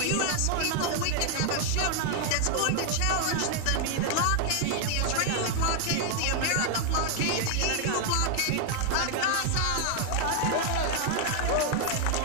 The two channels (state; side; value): different; both; correlation 0.00